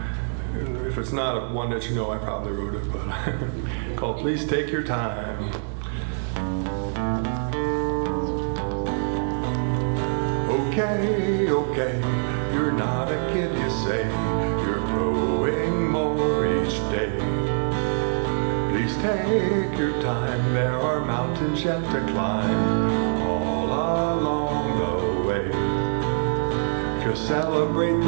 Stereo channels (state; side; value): silent; left; digital silence